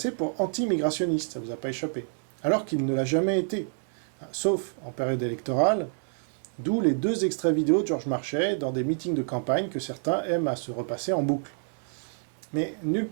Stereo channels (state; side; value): silent; left; digital silence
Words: pour anti-immigrationniste, ça ne vous a pas échappé, alors qu'il ne l'a jamais été, sauf en période électorale, d'où les 2 extraits vidéo de Georges Marchais dans des meetings de campagne que certains aiment à se repasser en boucle. Mais nulle